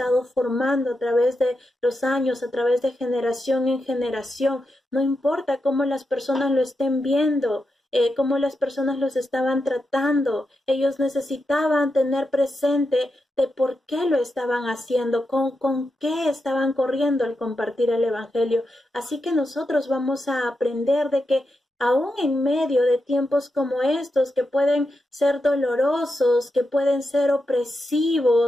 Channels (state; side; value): normal; both; correlation 0.87